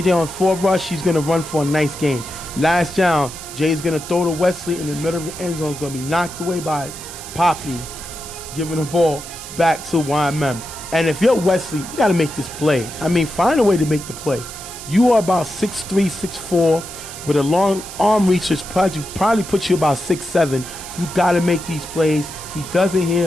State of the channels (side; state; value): right; noise; hiss, 12 dB below the sound